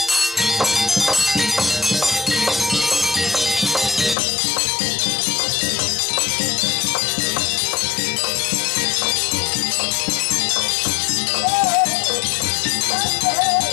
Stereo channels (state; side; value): drops out; right; at 4.2 s